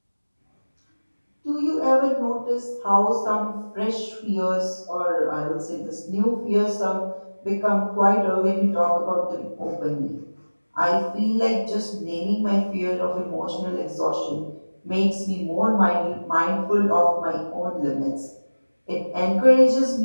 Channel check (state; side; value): inverted; both; correlation -1.00